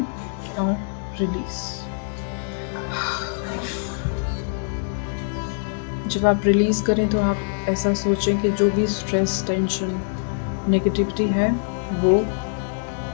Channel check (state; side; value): silent; right; digital silence